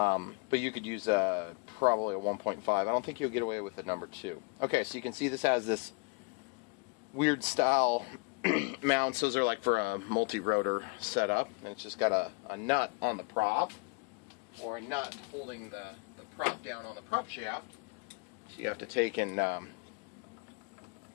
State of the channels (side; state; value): right; quieter; 30.7 dB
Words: you could use probably a 1.5. I don't think you'll get away with the number 2. Okay, so you can see this has this weird style mounts. Those are like for a multi-rotor setup. And it's just got a nut on the prop, or a nut holding the prop down on the prop shaft. So you have to take and